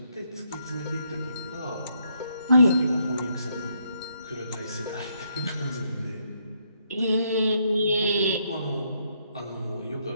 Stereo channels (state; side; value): inverted; both; correlation -0.75